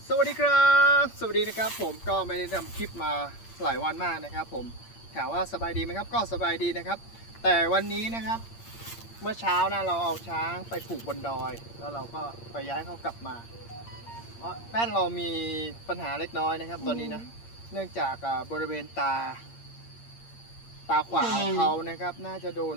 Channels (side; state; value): right; late; 8.7 ms